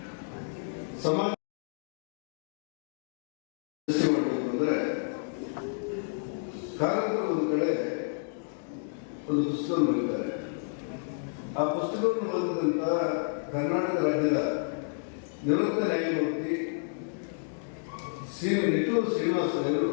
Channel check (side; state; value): right; silent; digital silence